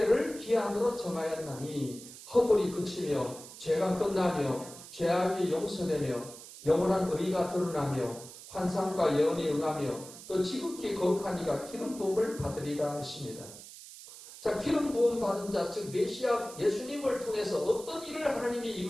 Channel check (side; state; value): right; noise; hiss, 15 dB below the sound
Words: 기한으로 정하였나니 허물이 그치며 죄가 끝나며 죄악이 용서되며 영원한 의가 드러나며 환상과 예언이 응하며 또 지극히 거룩한 이가 기름 부음을 받으리라 하십니다. 자, 기름 부음 받은 자, 즉 메시아 예수님을 통해서 어떤 일을 하나님이